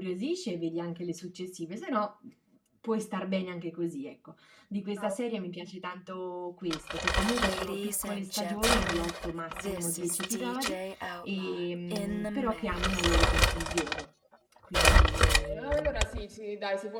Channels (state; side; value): identical; both; correlation 1.00